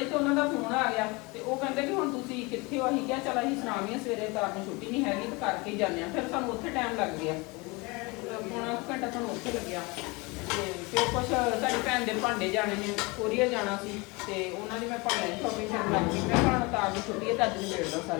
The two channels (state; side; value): quieter; right; 26.2 dB